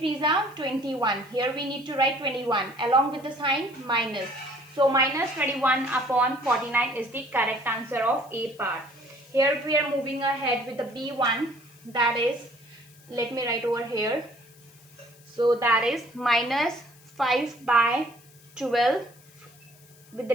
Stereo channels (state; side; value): noise; left; hiss, 26 dB below the sound